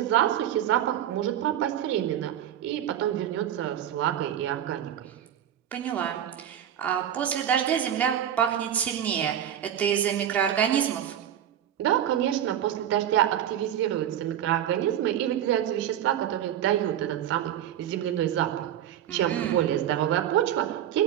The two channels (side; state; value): left; quieter; 10.6 dB